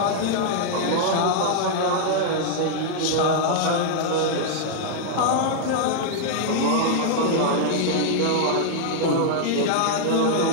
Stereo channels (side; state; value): both; different; correlation -0.01